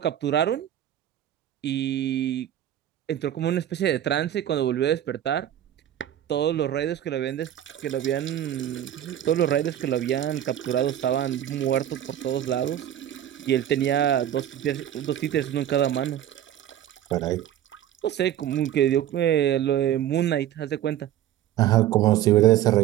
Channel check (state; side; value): quieter; left; 11.5 dB